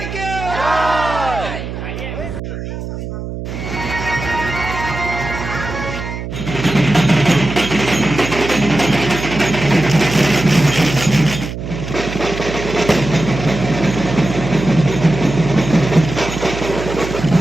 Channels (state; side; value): noise; right; hum, 7 dB below the sound